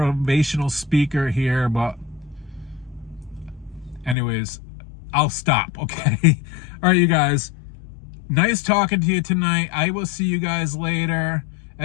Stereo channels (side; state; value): right; drops out; at 4.2 s